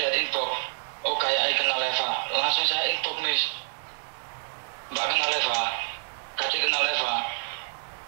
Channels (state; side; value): silent; left; digital silence